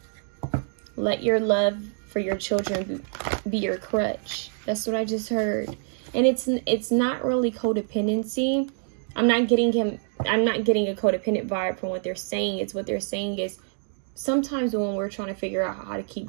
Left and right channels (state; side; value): silent; left; 61 dB below the other